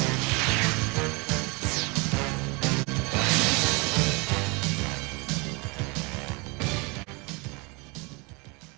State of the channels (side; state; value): left; quieter; 28.5 dB